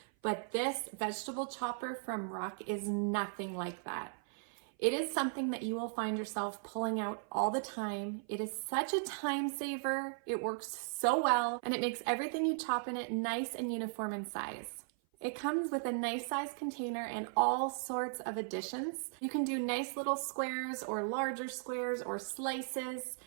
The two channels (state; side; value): silent; left; 53 dB below the other